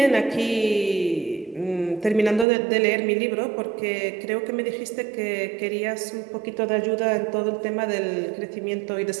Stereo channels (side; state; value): left; drops out; at 2.5 s